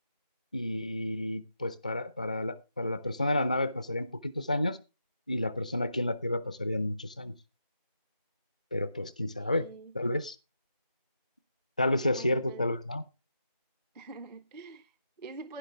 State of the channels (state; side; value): inverted; both; correlation -0.84